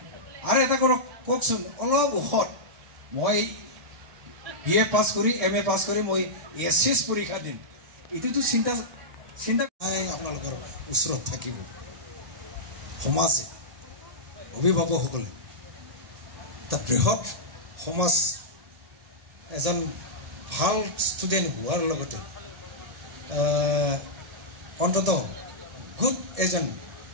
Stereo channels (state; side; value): late; left; 1.8 ms